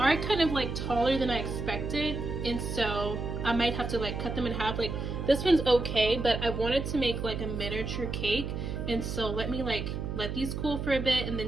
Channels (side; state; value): right; noise; hum, 4 dB below the sound